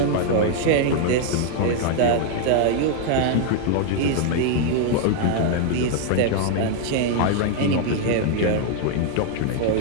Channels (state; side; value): different; both; correlation 0.00